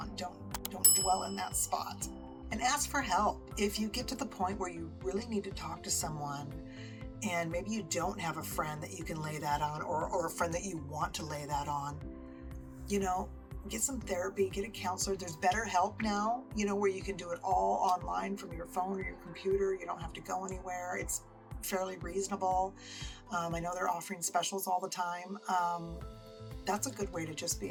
Don't dwell in that spot. And ask for help. If you get to the point where you really need to talk to someone, and maybe you don't have a friend that you can lay that on, or a friend that you want to lay that on, get some therapy, get a counselor. There's BetterHelp now, where you can do it all online from your phone or your computer. You don't have to go anywhere. It's fairly reasonable. I know they're offering specials all the time. That's a good way to just be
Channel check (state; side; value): identical; both; correlation 1.00